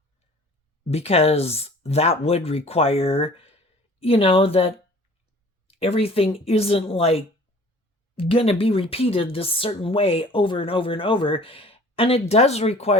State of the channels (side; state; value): both; normal; correlation 0.49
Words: because that would require that everything isn't like gonna be repeated this certain way over and over and over. And it does